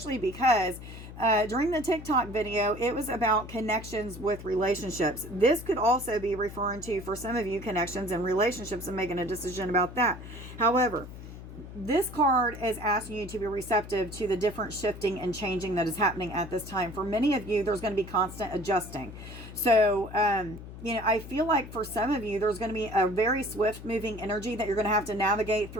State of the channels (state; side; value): noise; left; hum, 13 dB below the sound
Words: because during the TikTok video, it was about connections with relationships. This could also be referring to, for some of you, connections and relationships and making a decision about that. However, this card is asking you to be receptive to the different shifting and changing that is happening at this time. For many of you, there's going to be constant adjusting. So, I feel like for some of you, there's going to be a very swift moving energy that you're going to have to navigate